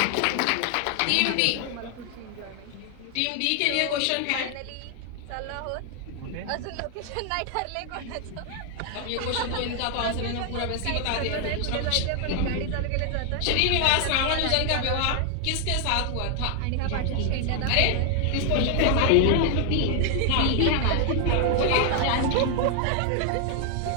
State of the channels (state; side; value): different; both; correlation 0.00